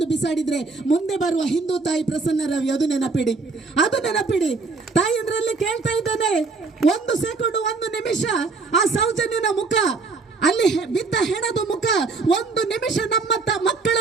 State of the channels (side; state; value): left; quieter; 4.1 dB